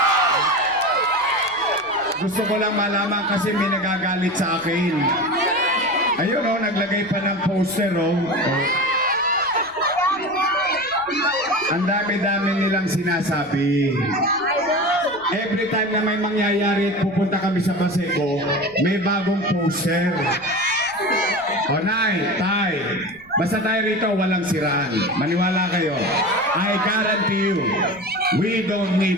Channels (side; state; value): left; noise; rumble, 28 dB below the sound